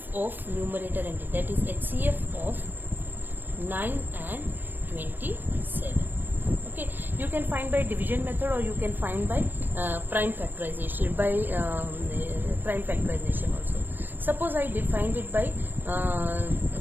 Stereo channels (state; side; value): late; left; 0.093 ms